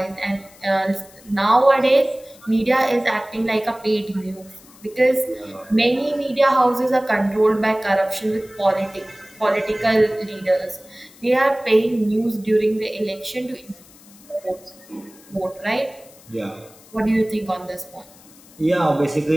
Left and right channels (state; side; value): noise; left; hiss, 24 dB below the sound